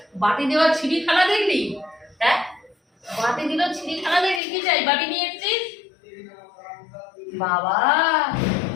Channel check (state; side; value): drops out; right; at 4.4 s